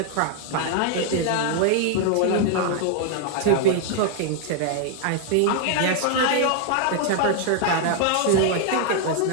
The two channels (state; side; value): different; both; correlation 0.00